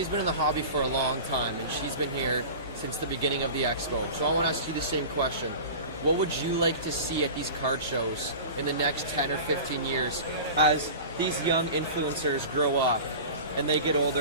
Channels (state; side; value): inverted; both; correlation -0.34